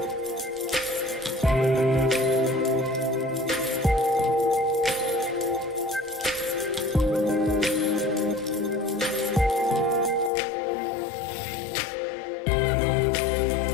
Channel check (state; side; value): drops out; right; at 10.3 s